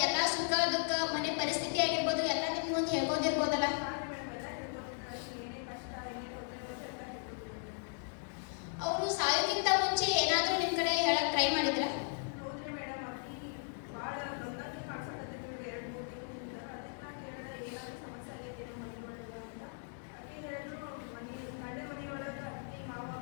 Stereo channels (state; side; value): silent; right; 53 dB below the other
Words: ಎಲ್ಲಾ ಸುಖ ದುಃಖ ಮನೆ ಪರಿಸ್ಥಿತಿ ಆಗಿರ್ಬೋದು ಎಲ್ಲ ನಿಮ್ ಮುಂದೆ ಹೇಳ್ಬೋದಿರ್ಬೋದಲ್ಲ. ಅವರು ಸಾಯೋಕ್ಕಿಂತ ಮುಂಚೆ ಏನಾದ್ರೂ ನಿಮ್ ಕಡೆ ಹೇಳಕ್ ಟ್ರೈ ಮಾಡಿದ್ರ?